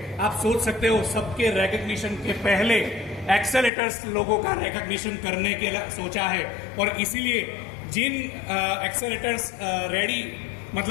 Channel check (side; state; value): right; drops out; at 3.7 s